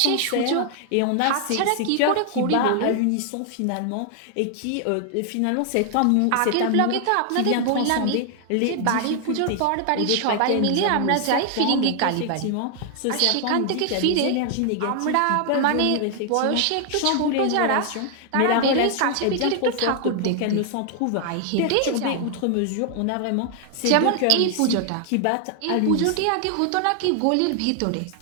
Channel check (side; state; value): both; different; correlation 0.00